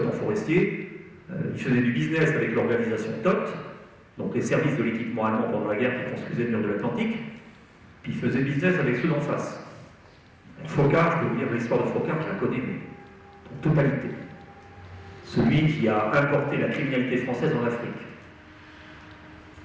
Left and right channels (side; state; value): both; identical; correlation 1.00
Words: forestier. Il faisait du business avec l'organisation TOT, donc les services de l'équipement allemand pendant la guerre qui construisaient le mur de l'Atlantique. Puis il faisait business avec ceux d'en face. Faucard, je peux vous dire l'histoire de Faucard, je la connais, mais en totalité. Celui qui a importé la criminalité française en Afrique.